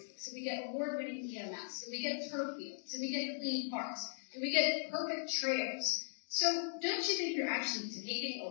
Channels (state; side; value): silent; right; digital silence